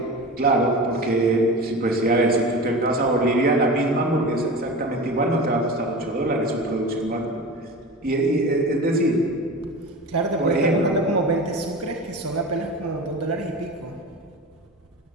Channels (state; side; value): normal; both; correlation 0.31